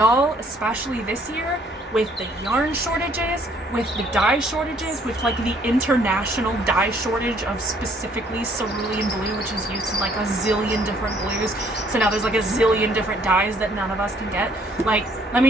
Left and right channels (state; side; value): normal; both; correlation 0.63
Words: especially this year, with the yarn shortages, with the dye shortages, with, like, the international dye shortage of specifically cerulean blue, which is used in, like, a zillion different blues. So now there's, like, a zillion different dyes that none of us can get. Like, let